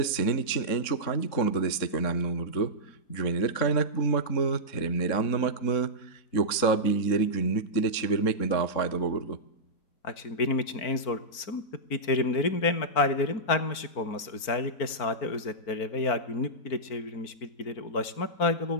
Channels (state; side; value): late; right; 4.4 ms